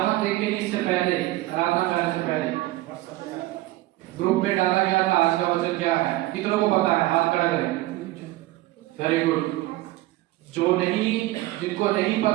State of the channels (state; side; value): quieter; left; 17.7 dB